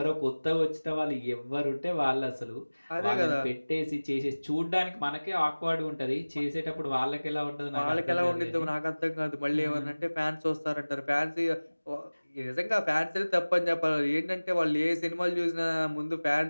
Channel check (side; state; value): both; inverted; correlation -1.00